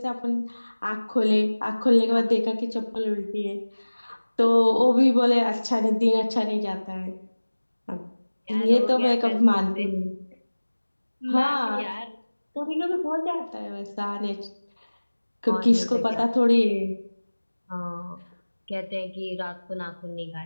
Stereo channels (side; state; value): both; inverted; correlation -1.00